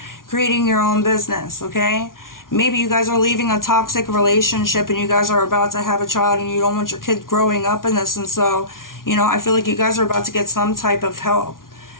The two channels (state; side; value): late; right; 0.90 ms